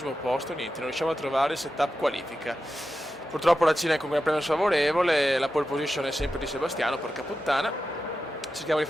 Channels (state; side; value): normal; both; correlation 0.91